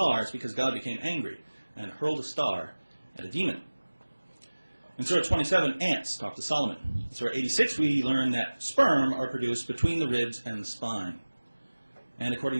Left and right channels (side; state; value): both; inverted; correlation -1.00